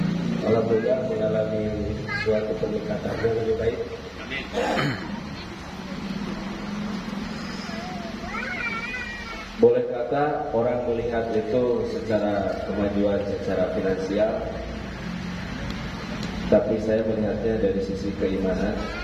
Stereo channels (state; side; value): identical; both; correlation 1.00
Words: alhamdulillah mengalami suatu peningkatan yang lebih baik. Boleh kata orang melihat itu secara kemajuan secara finansial, tapi saya melihatnya dari sisi keimanan.